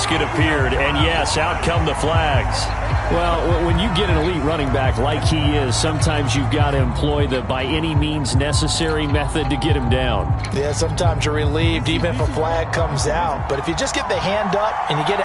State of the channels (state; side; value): identical; both; correlation 1.00